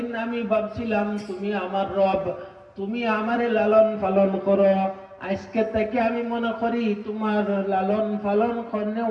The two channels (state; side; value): identical; both; correlation 1.00